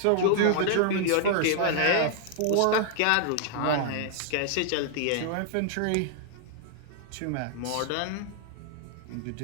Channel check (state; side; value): different; both; correlation -0.01